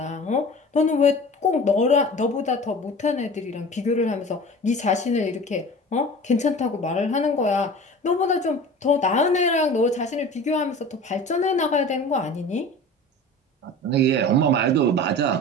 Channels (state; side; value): normal; both; correlation 0.38